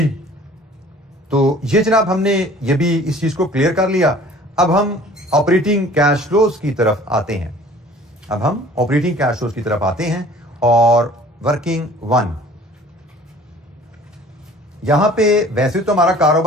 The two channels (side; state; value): both; normal; correlation 0.50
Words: तो ये जनाब हमने ये भी इस चीज को क्लियर कर लिया। अब हम ऑपरेटिंग कैश फ्लोज की तरफ आते हैं, अब हम ऑपरेटिंग कैश फ्लोज की तरफ आते हैं और वर्किंग 1। यहां पे वैसे तो हमारा